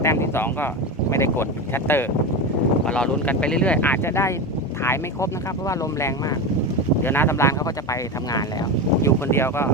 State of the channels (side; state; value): both; normal; correlation 0.20